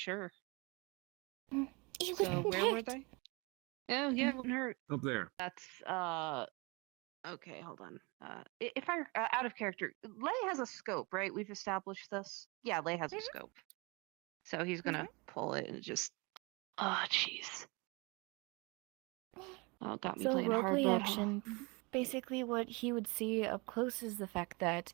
So where were they? Oh, yeah, it wouldn't hurt. Up there. That's, okay, hold on. If I, out of character, Lay has a scope, right? We've established this? Yeah, Lay has a scope. So he's gonna pull it and just, oh, jeez. Oh, got me So playing hard roleplay mode. action, basically what he would see up close is the fact that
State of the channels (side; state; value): left; quieter; 27.9 dB